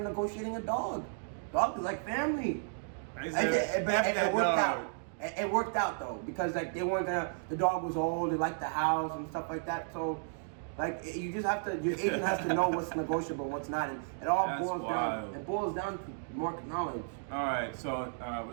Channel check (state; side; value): silent; left; digital silence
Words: negotiating a dog. Dog is like family. It worked out. It worked out though, because like they weren't gonna. The dog was old. They liked the house and stuff like that. So, like, you just have to. Your agent has to know what's negotiable, and what's not, and it all boils down to market knowledge. All right, so